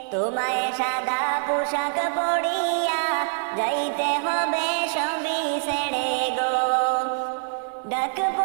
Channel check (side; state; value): left; silent; digital silence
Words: তোমায় সাদা পোশাক পরিয়া যাইতে হবে সবই ছেড়ে গো। ডাক